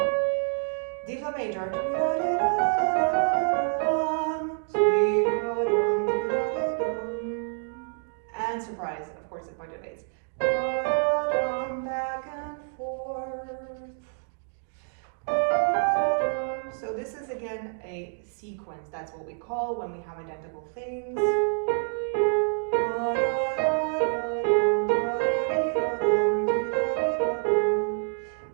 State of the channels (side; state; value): left; silent; digital silence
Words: D flat major. And surprise, of course, it modulates. Back and forth. So this is again a sequence. That's what we call when we have identical things.